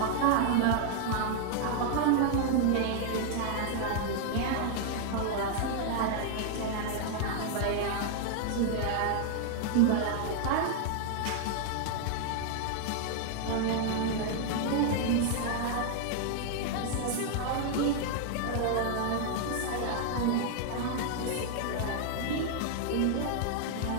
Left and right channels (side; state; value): both; different; correlation 0.00